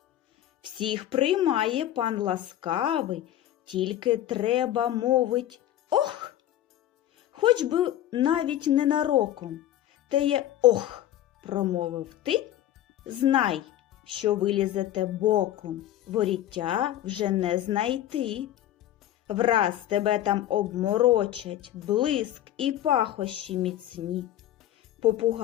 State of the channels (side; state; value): right; quieter; 12.5 dB